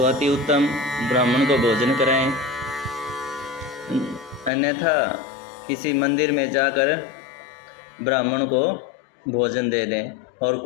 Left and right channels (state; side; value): drops out; right; at 4.5 s